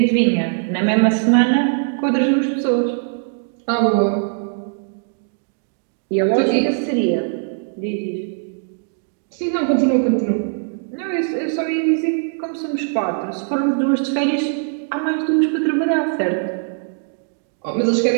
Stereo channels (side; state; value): left; silent; digital silence